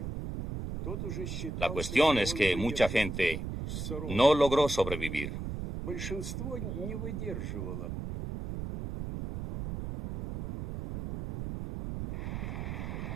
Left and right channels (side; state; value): right; noise; rumble, 5 dB below the sound